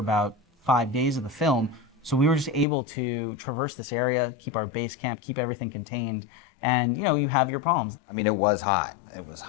5 days of the film. So we were just able to traverse this area, keep our base camp, keep everything contained, and you know, you have your problems. I mean, it was hot. It was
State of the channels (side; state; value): right; drops out; at 2.7 s